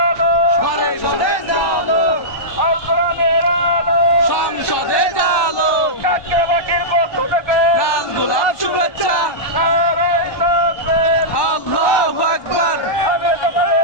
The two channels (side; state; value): right; late; 1.2 ms